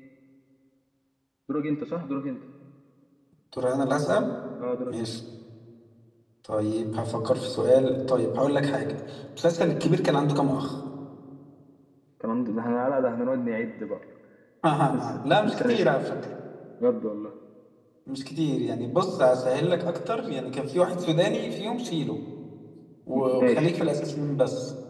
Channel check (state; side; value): identical; both; correlation 1.00